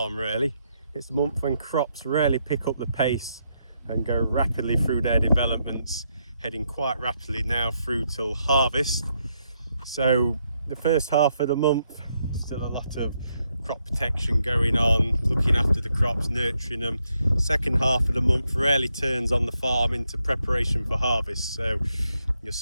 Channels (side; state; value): both; inverted; correlation -0.79